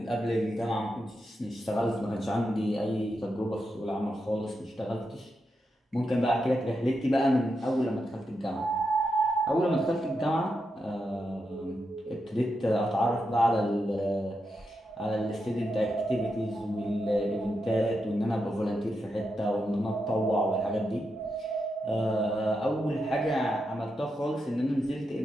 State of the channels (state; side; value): normal; both; correlation 0.86